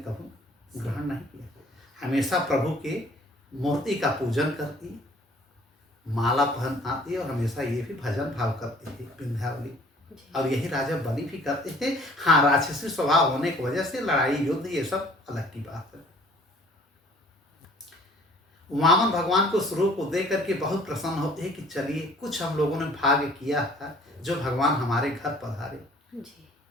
ग्रहण नहीं किया। हमेशा प्रभु के मूर्ति का पूजन करती, माला पहन आती और हमेशा ये भी भजन भाव करती थी विंध्यावली। और यही राजा बलि भी करते थे। हाँ, राक्षसी स्वभाव होने की वजह से लड़ाई युद्ध ये सब अलग की बात है। वामन भगवान को स्वरूप को देख करके बहुत प्रसन्न होते हैं कि चलिए कुछ हम लोगों ने भाग्य किया था जो भगवान हमारे घर पधारे।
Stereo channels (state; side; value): normal; both; correlation 0.53